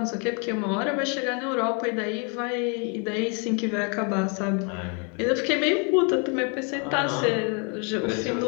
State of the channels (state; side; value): quieter; right; 36.5 dB